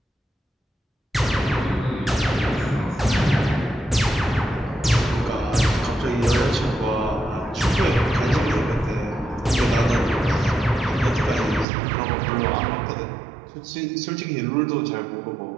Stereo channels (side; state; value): left; drops out; at 11.7 s